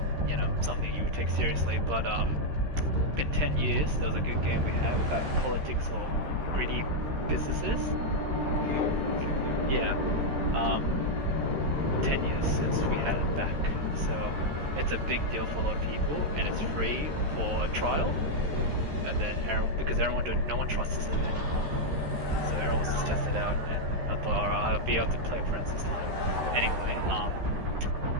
something you would take seriously, but been 10 years, there was a good game we had without politics or greedy businesses. Yeah, um, 10 years since we had it back. So it's a big deal for a lot of people, and it's free for a trial. And then because no one trusts it anymore, so everyone just test it out. And I thought, alright, I'll be able to play friends this time. Anyway,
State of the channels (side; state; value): left; late; 13 ms